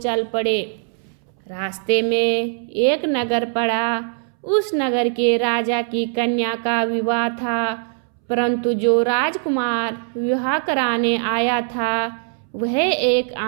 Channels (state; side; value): silent; left; 65 dB below the other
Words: पड़े। रास्ते में एक नगर पड़ा। उस नगर के राजा की कन्या का विवाह था, परंतु जो राजकुमार विवाह कराने आया था वह एक